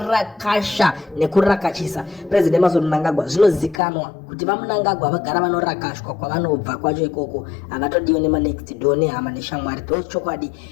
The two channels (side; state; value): right; drops out; at 3.8 s